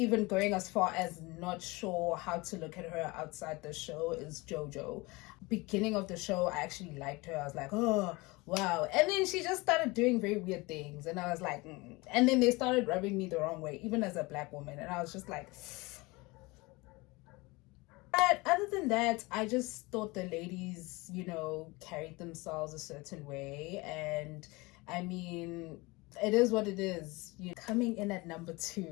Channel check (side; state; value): right; quieter; 24.0 dB